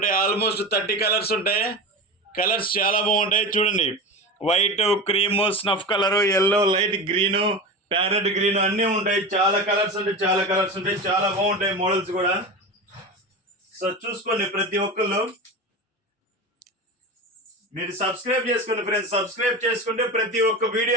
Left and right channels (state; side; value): normal; both; correlation 0.26